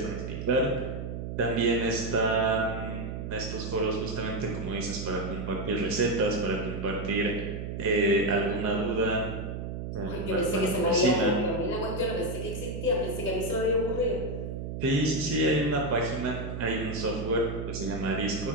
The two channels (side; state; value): right; noise; hum, 5 dB below the sound